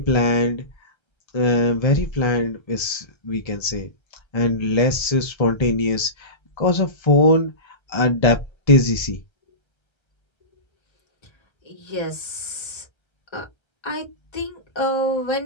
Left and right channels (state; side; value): late; right; 1.3 ms